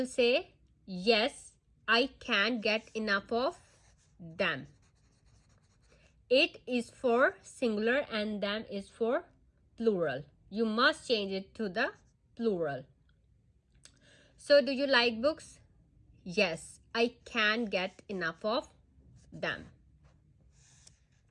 say, yes, I can't get enough of them. It is for singular and them is for plural. You must change it to the plural. So, do you like books? Yes, I can't get enough of them.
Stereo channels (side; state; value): both; identical; correlation 1.00